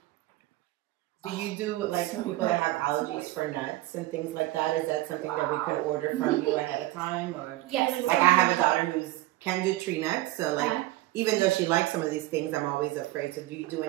Do you do like people that have allergies for nuts and things like that? Is that something that we could order from you ahead of time, or yes? Like I have a daughter who's can't do tree nuts. So like, even though she likes some of these things, I'm always afraid. So do you do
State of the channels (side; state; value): left; quieter; 17.6 dB